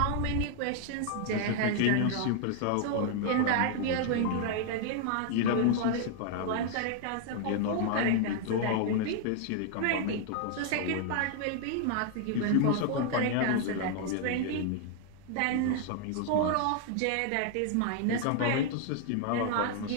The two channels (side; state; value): both; different; correlation 0.00